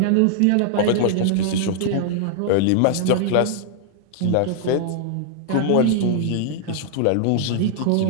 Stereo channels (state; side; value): different; both; correlation -0.01